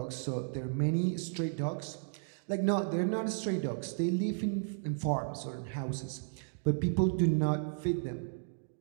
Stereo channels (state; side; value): silent; left; digital silence